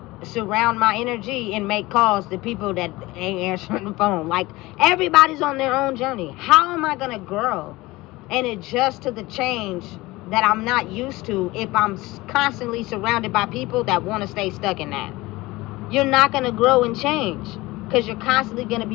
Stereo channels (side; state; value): right; quieter; 20.3 dB